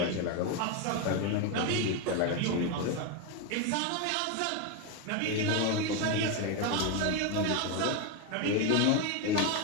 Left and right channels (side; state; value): both; different; correlation 0.02